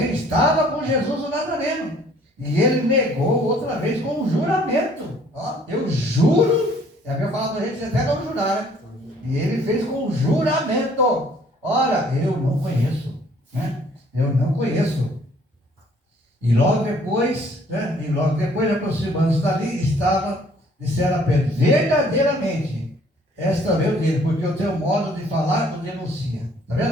estava com Jesus o Nazareno. E ele negou outra vez com um juramento. Ó, eu juro, é a minha palavra, a gente até não jurar, né? E ele fez com um juramento. Ora, eu não conheço, né? Eu não conheço. E logo depois, né? Aproximando-se dali, disseram a Pedro, verdadeiramente, esta veio dele, porque o teu modo de falar o denuncia. Está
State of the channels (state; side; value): normal; both; correlation 0.59